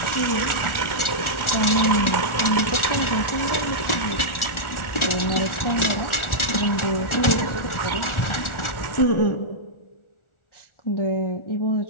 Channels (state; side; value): late; right; 1.4 ms